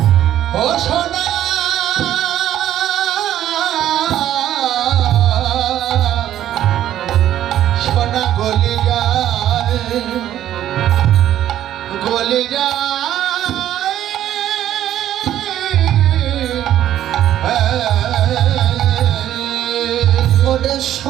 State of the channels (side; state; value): left; quieter; 11.9 dB